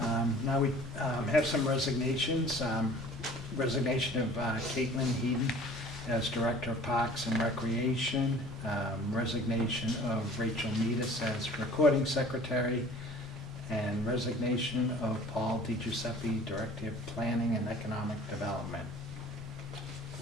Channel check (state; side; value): normal; both; correlation 0.48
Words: Now we have some resignations. Resignation of Caitlin Heaton as Director of Parks and Recreation. Resignation of Rachel Meadus as Recording Secretary. And resignation of Paul DiGiuseppe, Director of Planning and Economic Development.